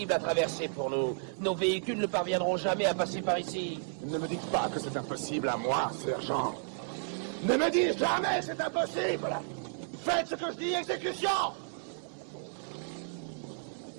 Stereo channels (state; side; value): silent; left; 56 dB below the other